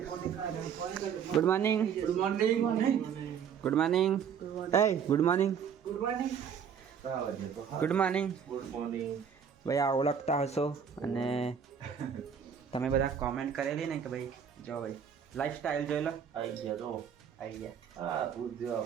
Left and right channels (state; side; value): quieter; left; 7.6 dB